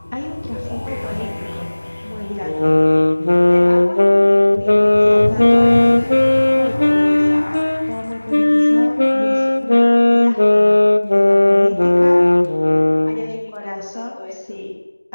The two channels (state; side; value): inverted; both; correlation -1.00